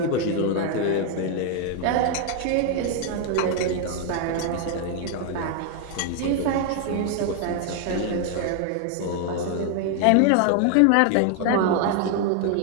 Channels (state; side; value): different; both; correlation 0.00